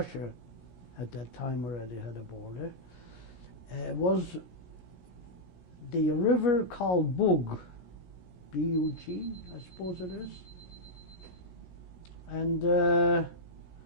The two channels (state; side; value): late; right; 17 ms